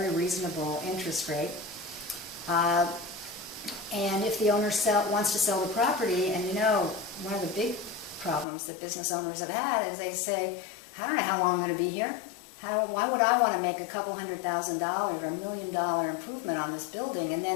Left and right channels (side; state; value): right; drops out; at 8.5 s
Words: reasonable interest rate. And if the owner wants to sell the property, and one of the big problems that business owners have had is they say, I don't know how long I'm going to be here. Why would I want to make a couple $100,000 or $1 million improvement on this building and